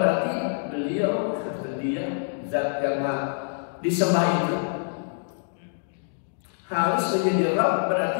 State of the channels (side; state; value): right; silent; digital silence